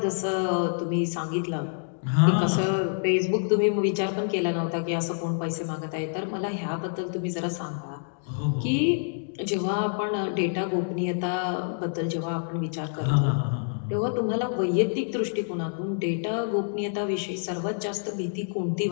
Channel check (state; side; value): silent; right; digital silence